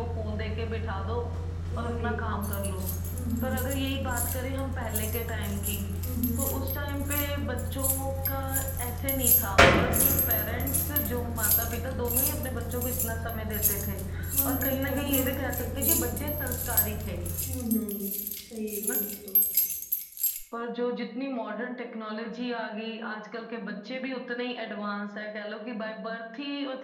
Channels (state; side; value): identical; both; correlation 1.00